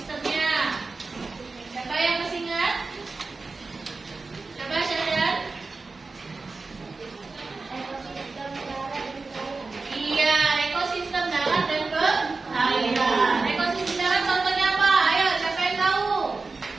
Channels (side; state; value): left; quieter; 3.9 dB